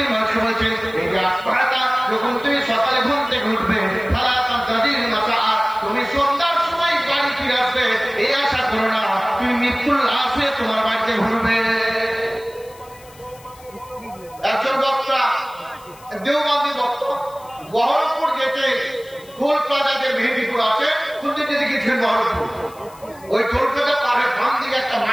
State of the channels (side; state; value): left; noise; hiss, 24 dB below the sound